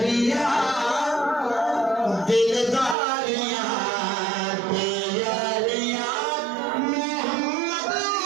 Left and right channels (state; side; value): drops out; left; at 3.0 s